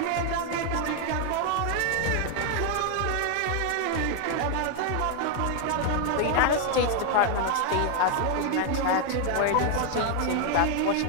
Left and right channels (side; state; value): both; different; correlation 0.01